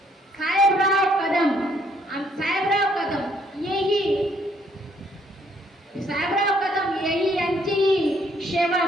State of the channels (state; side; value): normal; both; correlation 0.67